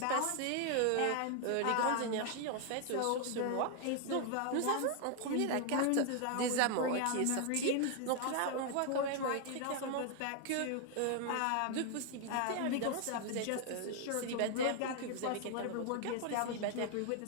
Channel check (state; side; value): different; both; correlation 0.00